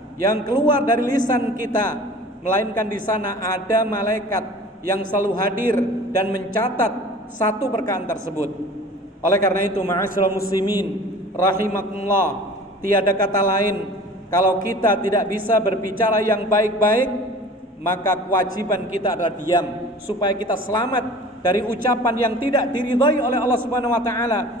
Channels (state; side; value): normal; both; correlation 0.43